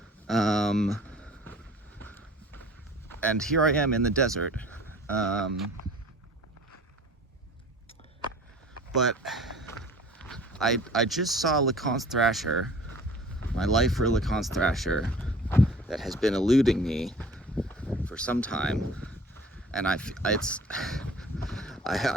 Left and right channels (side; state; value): both; normal; correlation 0.46